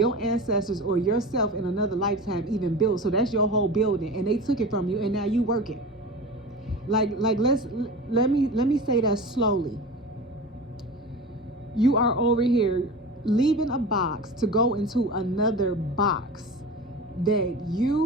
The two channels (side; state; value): both; normal; correlation 0.32